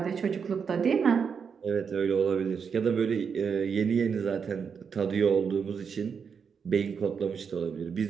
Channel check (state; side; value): quieter; left; 6.4 dB